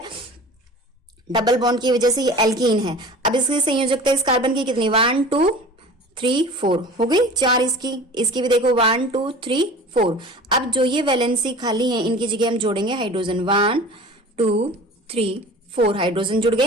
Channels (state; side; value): normal; both; correlation 0.40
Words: डबल बॉन्ड की वजह से ये एल्कीन है। अब इसकी संयोजकता इस कार्बन की कितनी, 1 2 3 4 हो गई, 4 इसकी भी देखो 1 2 3 4। अब जो ये वैलेंसी खाली है इनकी जगह हम जोड़ेंगे हाइड्रोजन, 1 2 3 4 हाइड्रोजन जुड़ गए